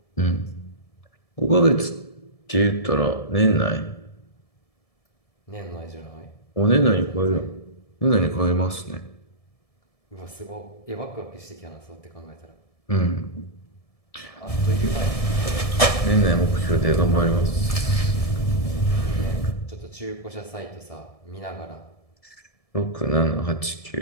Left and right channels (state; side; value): late; right; 1.7 ms